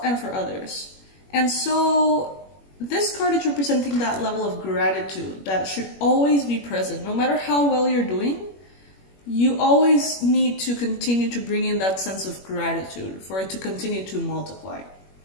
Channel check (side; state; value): right; late; 21 ms